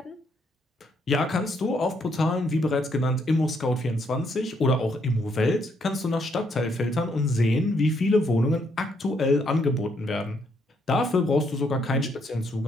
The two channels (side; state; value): both; normal; correlation 0.73